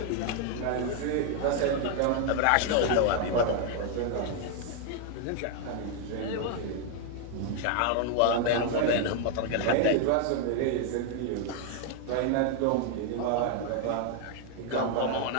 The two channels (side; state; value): both; different; correlation 0.00